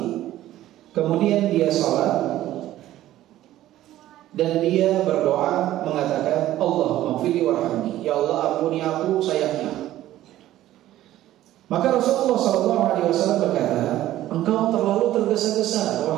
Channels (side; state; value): left; quieter; 14.1 dB